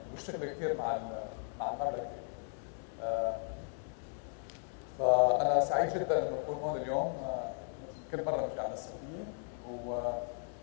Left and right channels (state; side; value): silent; right; 54 dB below the other